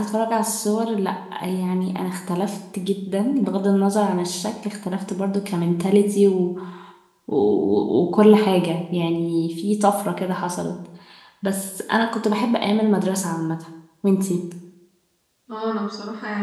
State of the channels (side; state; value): both; identical; correlation 1.00